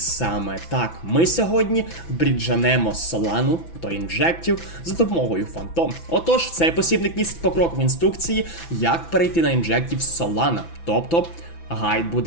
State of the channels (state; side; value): late; right; 6.0 ms